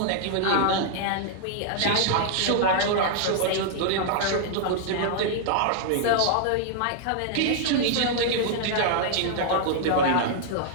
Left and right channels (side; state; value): both; different; correlation -0.01